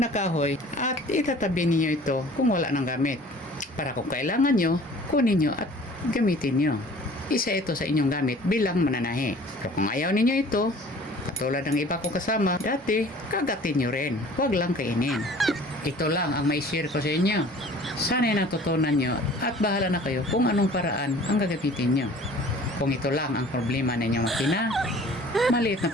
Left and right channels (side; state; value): both; normal; correlation 0.49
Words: kahoy at itatabi ninyo ito kung wala nang gamit. Para kung kailangan nyo, kunin nyo at gamitin nyo. Isa ito sa inyong gamit bilang mananahi. Pero kung ayaw ninyo ito, katulad ng iba ko kasama, dati, kagatin nyo rin. Huwag lang kainin. Ito lang ang may share ko sa inyo. Sana'y natutunan nyo at bahala na kayo kung anong paraan ang gagamitin nyo. Kung ito lang ang problema na inyong makina, maliit na